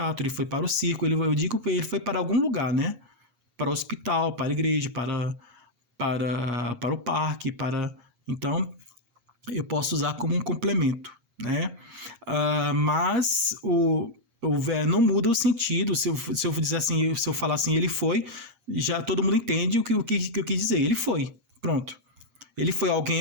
ele foi para o circo. Eu digo que ele foi para algum lugar, né? Para o hospital, para a igreja, para o parque, então eu posso usar como um complemento, né? Mas não muda o sentido. Se eu dizer assim, se eu falar assim, ele foi, já todo mundo entende o que eu quis dizer. Ele foi, pronto. Ele foi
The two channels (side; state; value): left; late; 7.5 ms